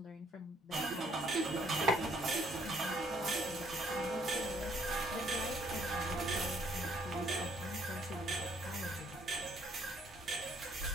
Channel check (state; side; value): normal; both; correlation 0.64